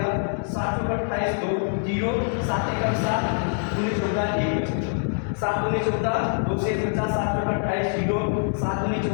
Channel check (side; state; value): right; silent; digital silence